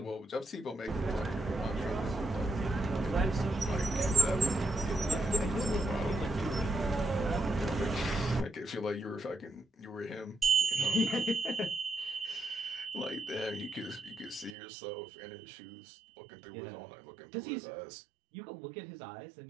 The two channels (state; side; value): drops out; left; at 14.6 s